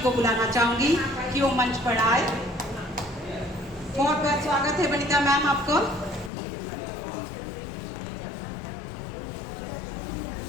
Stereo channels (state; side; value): drops out; right; at 6.3 s